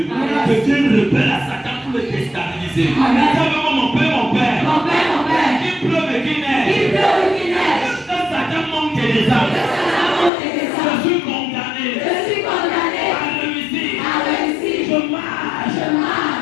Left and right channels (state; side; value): drops out; right; at 10.3 s